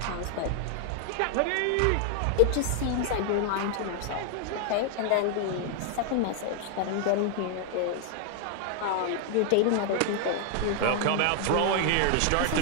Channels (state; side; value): different; both; correlation 0.00